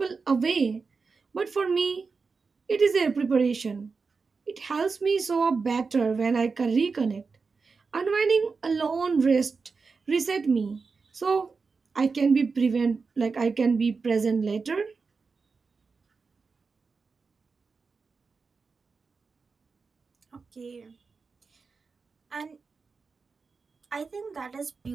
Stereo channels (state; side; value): quieter; left; 4.7 dB